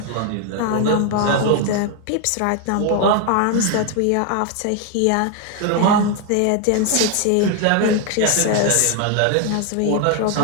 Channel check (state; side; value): different; both; correlation 0.01